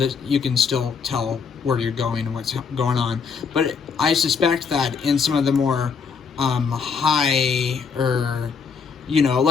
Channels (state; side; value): quieter; right; 5.8 dB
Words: you can still tell where you're going and what's going on. But I suspect that in some of the more high